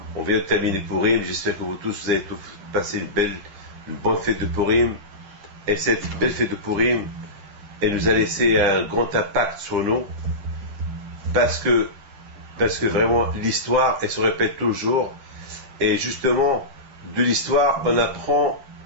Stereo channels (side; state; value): left; late; 9.8 ms